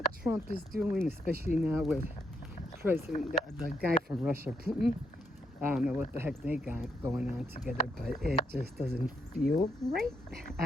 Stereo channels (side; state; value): both; normal; correlation 0.78